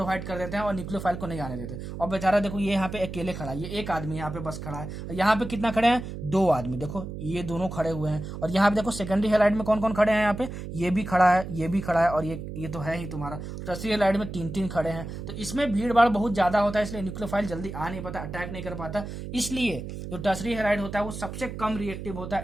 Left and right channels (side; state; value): right; noise; hum, 8 dB below the sound